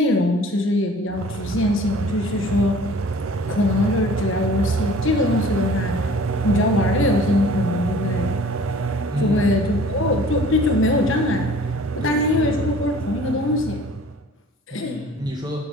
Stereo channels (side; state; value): both; normal; correlation 0.49